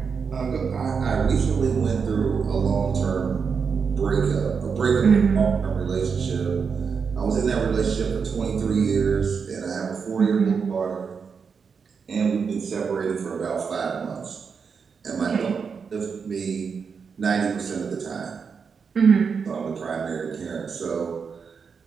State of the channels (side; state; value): left; quieter; 5.9 dB